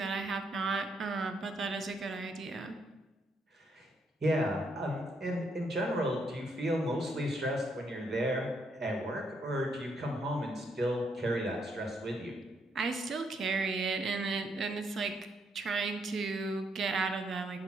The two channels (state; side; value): normal; both; correlation 0.74